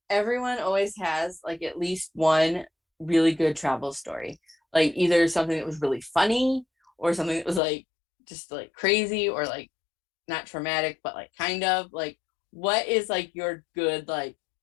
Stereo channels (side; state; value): right; drops out; at 7.6 s